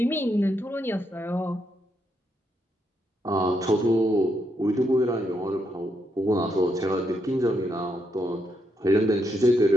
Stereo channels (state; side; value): normal; both; correlation 0.79